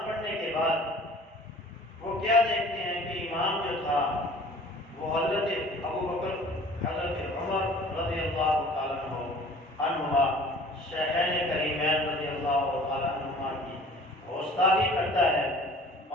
پڑھنے کے بعد وہ کیا دیکھتے ہیں کہ امام جو تھا وہ حضرت ابو بکر، حضرت عمر رضی اللہ تعالیٰ عنہما، شیخین کریمین رضی اللہ تعالیٰ عنہما کی گستاخی کرتا ہے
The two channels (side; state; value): both; normal; correlation 0.48